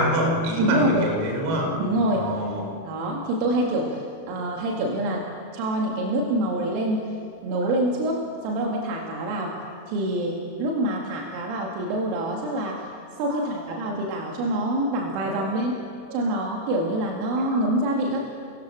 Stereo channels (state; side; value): late; left; 36 ms